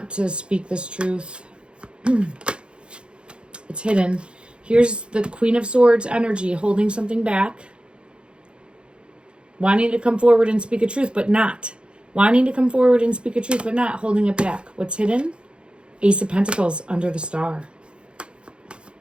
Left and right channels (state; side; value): late; left; 0.055 ms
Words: to speak this truth. It's hidden. Here's the Queen of Swords energy, holding something back. Wanting to come forward and speak a truth, but not. Wanting to come forward and speak a truth, but not. Holding it back. What's hidden? Ace of Pentacles under the star.